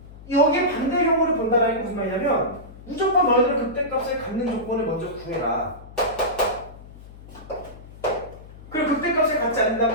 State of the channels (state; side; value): noise; left; hum, 18 dB below the sound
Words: 여기에 반대 경우를 본다는 게 무슨 말이냐면 무조건 너희들은 극대값을 갖는 조건을 먼저 구해라. 그리고 극대값을 갖지